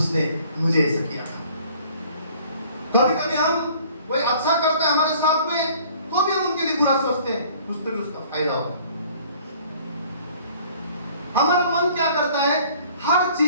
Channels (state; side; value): inverted; both; correlation -0.54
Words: मुझे ऐसा किया था। कभी कभी हम कोई अच्छा करता है हमारे साथ में, तो भी हम उनके लिए बुरा सोचते हैं, कुछ तो भी उसका फायदा होगा। हमारा मन क्या करता है? हर